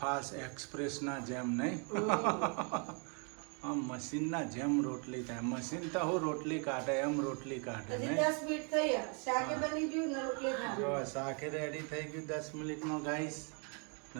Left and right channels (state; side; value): quieter; left; 37.5 dB